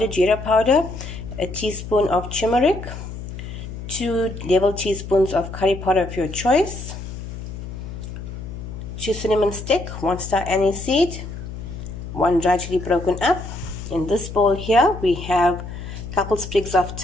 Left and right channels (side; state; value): left; noise; hum, 9 dB below the sound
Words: jeera powder. A teaspoon of turmeric, 2 level teaspoons of curry powder of your choice, 2 cinnamon stick, 1 star anise seed, 1 dry chili broken up. In this bowl here we have a couple sprigs of